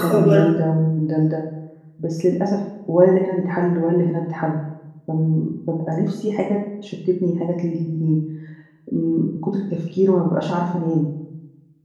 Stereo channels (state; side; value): identical; both; correlation 1.00